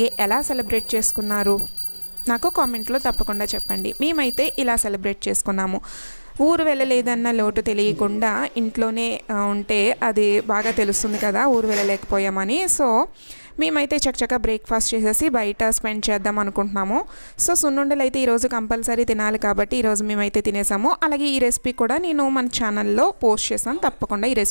ఎలా సెలబ్రేట్ చేసుకున్నారు నాకు కామెంట్లో తప్పకుండా చెప్పండి. మేమైతే ఇలా సెలబ్రేట్ చేసుకున్నాము. ఊరు వెళ్ళలేదన్న లోటు తెలియకుండా ఇంట్లోనే ఉంటే అది బాగా తెలుస్తుంది కదా ఊరు వెళ్ళలేకపోయామని. సో మేమైతే చక్కగా బ్రేక్ఫాస్ట్ చేసేసి బయట స్పెండ్ చేద్దాం అనుకుంటున్నాము. సో సున్నుండలు అయితే ఈరోజు కంపల్సరీ తినాలి కాబట్టి ఈరోజు మేమైతే తినేసాము. అలాగే ఈ రెసిపీ కూడా నేను మన ఛానల్లో పోస్ట్ చేశాను, తప్పకుండా ఈ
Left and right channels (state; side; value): inverted; both; correlation -1.00